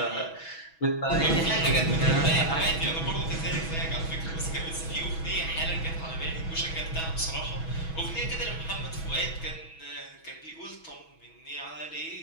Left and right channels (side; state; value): right; late; 6.2 ms